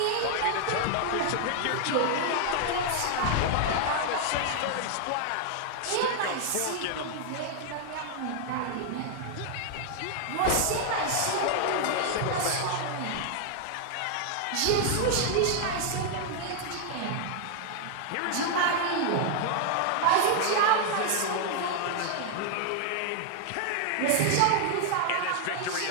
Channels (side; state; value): both; different; correlation 0.00